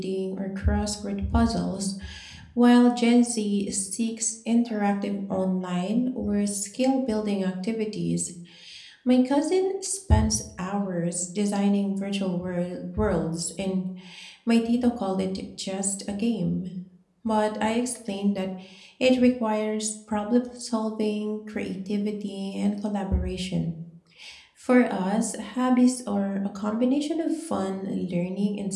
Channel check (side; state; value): both; identical; correlation 1.00